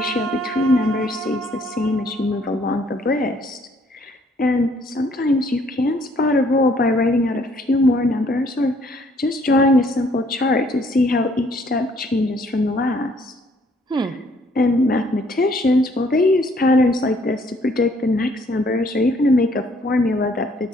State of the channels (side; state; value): both; normal; correlation 0.64